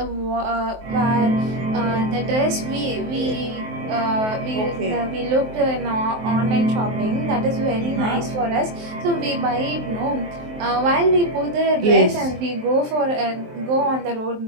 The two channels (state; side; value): late; left; 23 ms